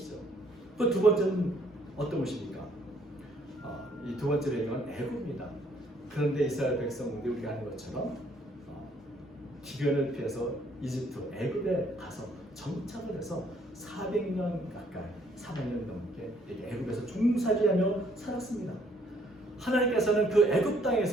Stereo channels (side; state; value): both; normal; correlation 0.65